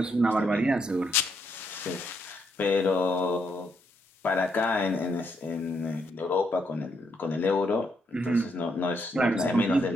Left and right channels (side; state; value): both; normal; correlation 0.76